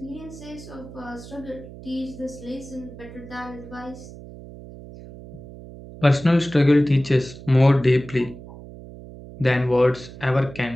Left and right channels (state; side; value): noise; right; hum, 16 dB below the sound